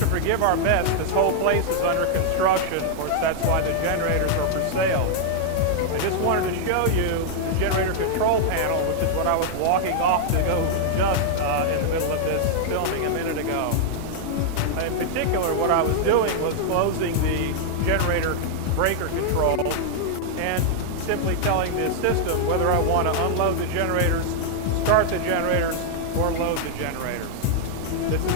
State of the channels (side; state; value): both; different; correlation -0.01